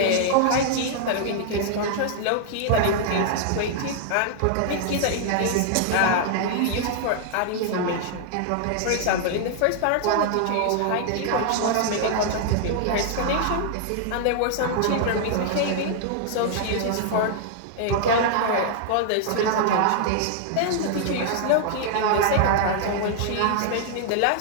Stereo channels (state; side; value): different; both; correlation 0.00